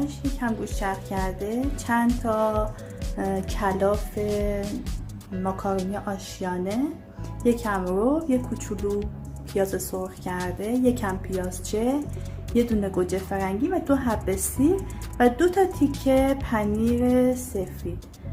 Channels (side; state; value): both; identical; correlation 1.00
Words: یکم گوشت چرخ کرده، چند تا کلاف ماکارونی آشیانه، یکم رب، یک کوچولو پیاز سرخ کرده، یکم پیازچه، یه دونه گوجه فرنگی و 2 حبه سیر و 2 تا تیکه پنیر سفید.